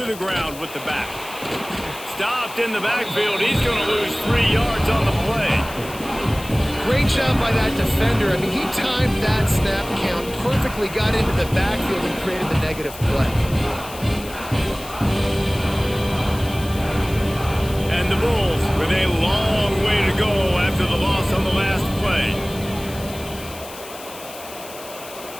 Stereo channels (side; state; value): left; noise; hiss, 15 dB below the sound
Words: the ground with the back. Stopped in the backfield. He's going to lose 3 yards on the play. Great job by that defender. I mean, he timed that snap count perfectly, got into the backfield and created the negative play. And the Bulls with a long way to go after the loss on the last play.